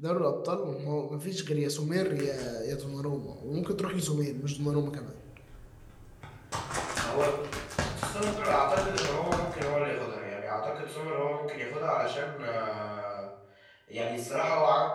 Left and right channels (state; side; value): identical; both; correlation 1.00